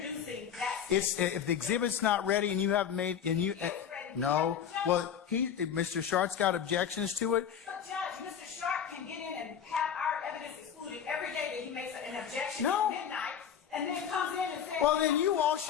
that. If the exhibit's not ready and you haven't made, no, well, Mr. Shart's got objections to it. But Judge, Mr. Sharp can get in and have our evidence excluded every day that he makes an objection at midnight, and then comes in and says. Well, then you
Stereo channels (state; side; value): quieter; right; 8.4 dB